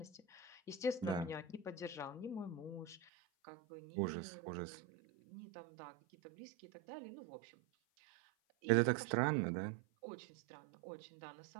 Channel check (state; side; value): drops out; left; at 3.1 s